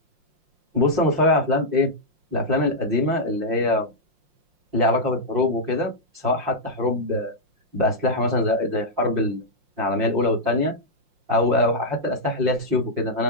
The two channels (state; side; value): late; left; 5.6 ms